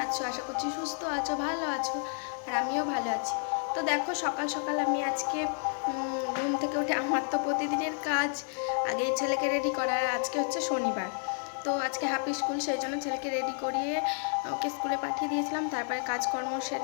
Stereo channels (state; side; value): silent; right; 57 dB below the other